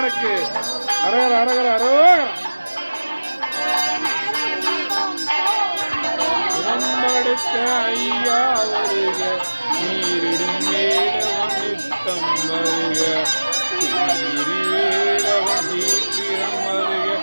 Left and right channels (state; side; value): inverted; both; correlation -1.00